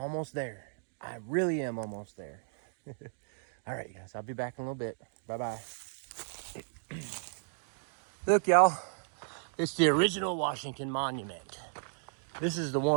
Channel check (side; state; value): left; silent; digital silence